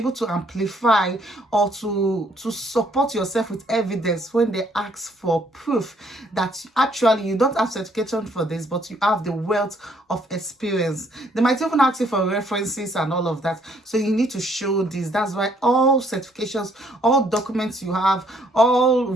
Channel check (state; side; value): normal; both; correlation 0.66